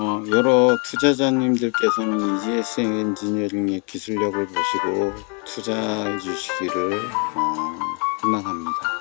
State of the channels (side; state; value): right; quieter; 35.7 dB